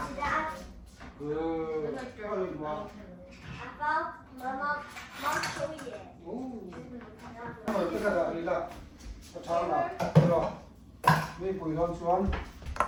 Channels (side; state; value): both; identical; correlation 1.00